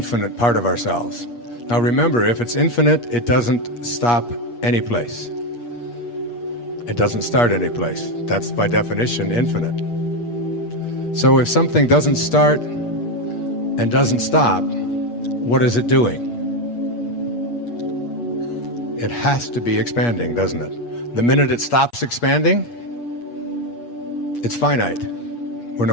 part of ourselves. Now remember, if it's infinite, it doesn't stop any place. It doesn't start any place. That's by definition infinite. So if something doesn't start and doesn't stop, what is it doing? It has to be expanding, doesn't it? The minute it stops expanding, it's finite. We're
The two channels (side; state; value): right; late; 8.4 ms